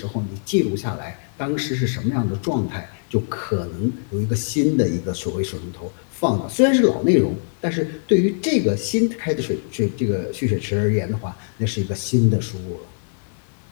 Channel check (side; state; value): right; silent; 64 dB below the other